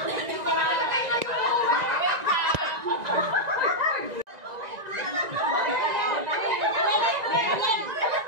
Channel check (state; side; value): late; left; 1.9 ms